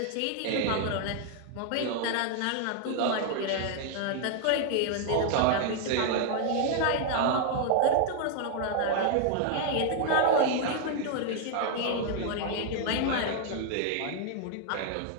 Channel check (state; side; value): different; both; correlation 0.00